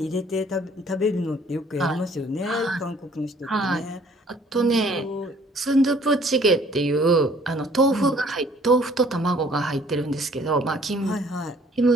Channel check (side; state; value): both; normal; correlation 0.58